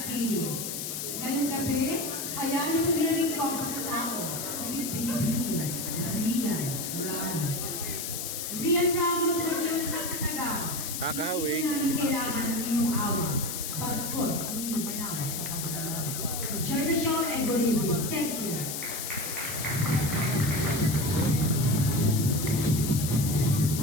City. Ngayong gabi, kaya niyo pagrinamig ko ang pagkatao ni Miss Binibini, Rian Ramos. Rian Ramos sa nagyong isang kataga. Kakawig. Hindi namin kailangan ng inyong awa. Bagkos ang inyong kailangan kapag nalaman. Enjoy the show and good evening. Thank you.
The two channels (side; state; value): left; noise; hiss, 4 dB below the sound